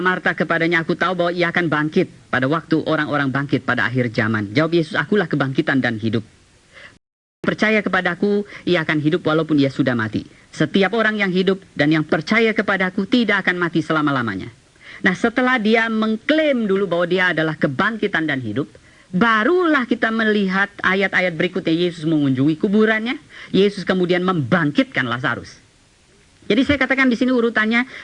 Marta kepadanya, aku tahu bahwa ia akan bangkit pada waktu orang-orang bangkit pada akhir zaman. Jawab Yesus, akulah kebangkitan dan hidup. Percaya kepadaku, ia akan hidup walaupun ia sudah mati. Setiap orang yang hidup dan yang percaya kepadaku tidak akan mati selama-lamanya. Nah, setelah dia mengklaim dulu bahwa dia adalah kebangkitan dan hidup, barulah kita melihat ayat-ayat berikutnya. Yesus mengunjungi kuburannya. Yesus kemudian membangkitkan Lazarus. Jadi saya katakan di sini urutannya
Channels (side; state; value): both; identical; correlation 1.00